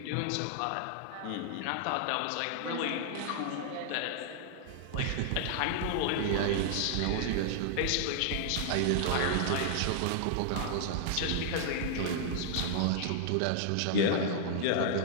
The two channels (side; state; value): both; different; correlation -0.01